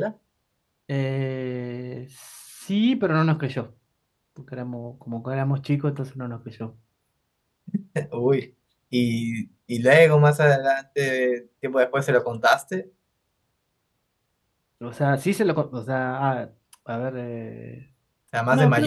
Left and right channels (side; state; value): both; identical; correlation 1.00